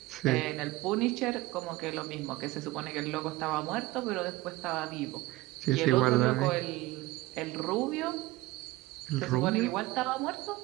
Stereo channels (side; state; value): left; quieter; 19.1 dB